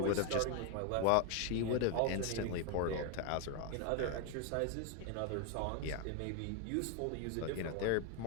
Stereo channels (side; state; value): both; different; correlation 0.01